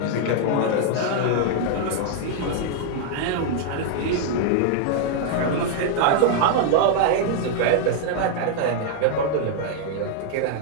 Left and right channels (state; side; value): different; both; correlation 0.00